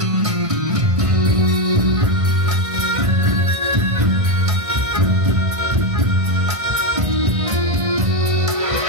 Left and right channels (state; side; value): late; left; 1.5 ms